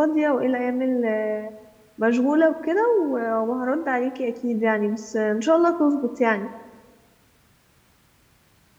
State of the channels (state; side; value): identical; both; correlation 1.00